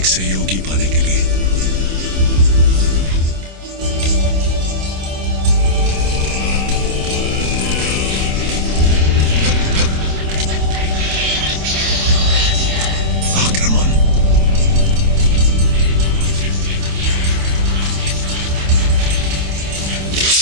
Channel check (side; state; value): left; late; 27 ms